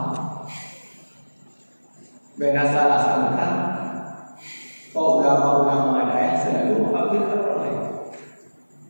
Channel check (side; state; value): both; inverted; correlation -1.00